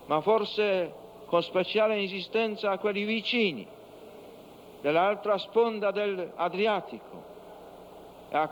ma forse con speciale insistenza a quelli vicini, dell'altra sponda dell'Adriatico. E a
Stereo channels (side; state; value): both; identical; correlation 1.00